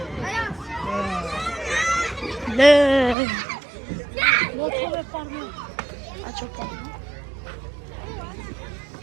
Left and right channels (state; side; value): drops out; left; at 3.2 s